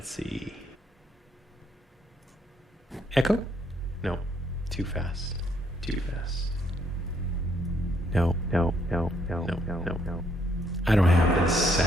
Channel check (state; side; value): normal; both; correlation 0.71